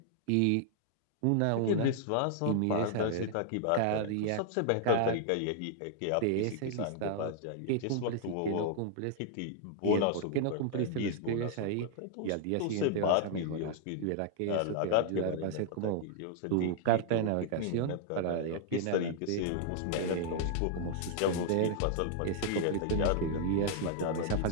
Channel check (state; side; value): different; both; correlation -0.01